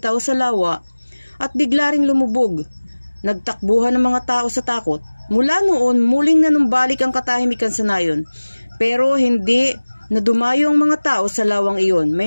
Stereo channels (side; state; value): both; inverted; correlation -1.00